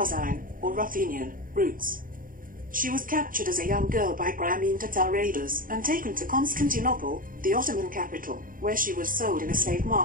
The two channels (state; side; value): late; left; 0.40 ms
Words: or Ruthenian, roots. She was captured as a young girl by Crimean Tatar raiders and taken to Constantinople, the Ottoman capital, where she was sold in a slave